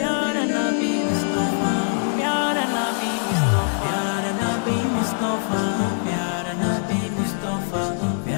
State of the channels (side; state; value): right; silent; 64 dB below the other